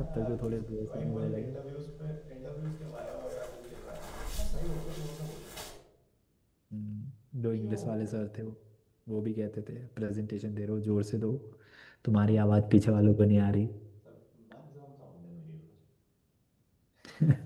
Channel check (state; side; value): identical; both; correlation 1.00